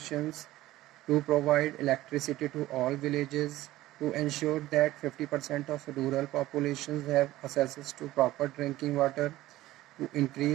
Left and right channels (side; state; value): left; quieter; 16.2 dB